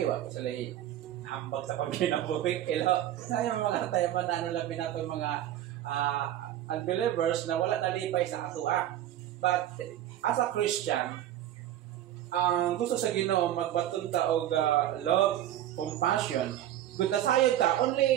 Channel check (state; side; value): quieter; left; 12.4 dB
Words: wa ko sila hambag sa pagkinabuhi. Ilo, sayang mga tayo man ano labi nato mga unbelievers na wala nalipay sa atua. But as a Christian, ang gusto sa Ginoo magbatun ta og love, compassion. Good na sayod ta